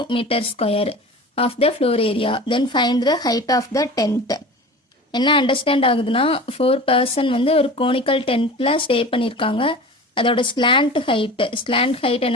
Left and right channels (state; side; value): normal; both; correlation 0.36